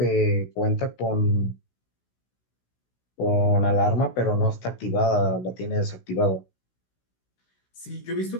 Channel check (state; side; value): late; right; 16 ms